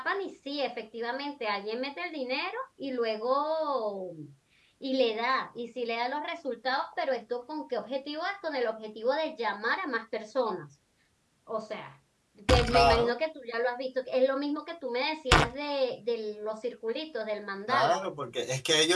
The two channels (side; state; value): both; identical; correlation 1.00